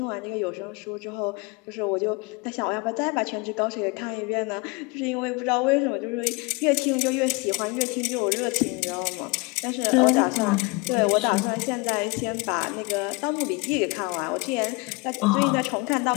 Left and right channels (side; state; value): right; quieter; 26.8 dB